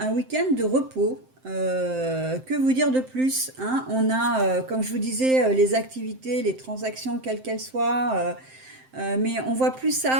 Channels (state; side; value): late; left; 7.7 ms